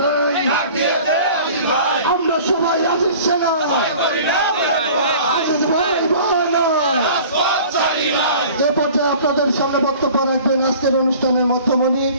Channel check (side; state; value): both; inverted; correlation -0.45